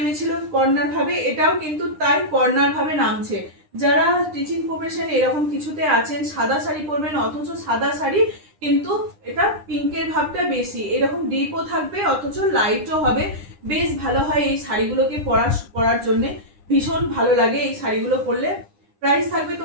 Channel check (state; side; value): late; left; 9.9 ms